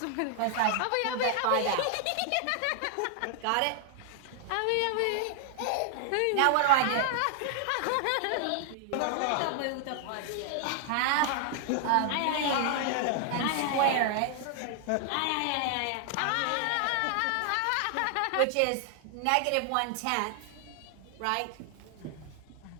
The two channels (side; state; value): both; different; correlation 0.00